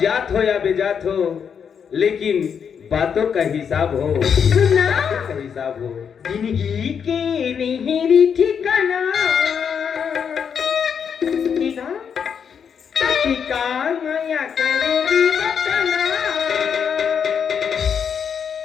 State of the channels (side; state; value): right; quieter; 7.2 dB